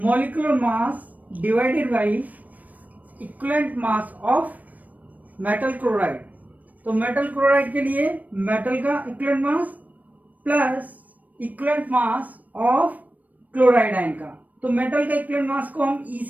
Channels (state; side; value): late; left; 0.076 ms